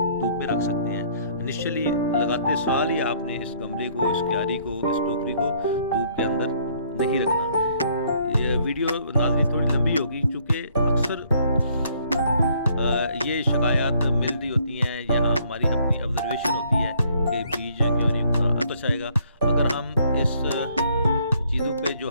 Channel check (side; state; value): both; inverted; correlation -0.64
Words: धूप में रख सकते हैं। इनिशियली लगाते साल ही आपने इस गमले को, इस क्यारी को, इस टोकरी को धूप के अंदर नहीं रखना। ये वीडियो नाज़रीन थोड़ी लंबी होगी, चूँकि अक्सर ये शिकायत मिल रही होती हैं या हमारी अपनी ऑब्जर्वेशन होती है कि बीज क्यों नहीं उगता। तो चाहेगा अगर हम इस चीज़ों पे जो